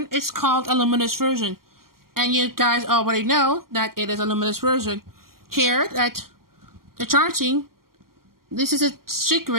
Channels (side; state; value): left; late; 0.92 ms